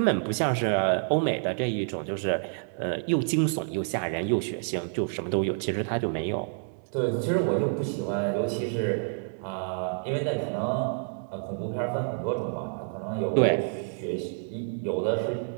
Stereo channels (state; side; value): silent; left; digital silence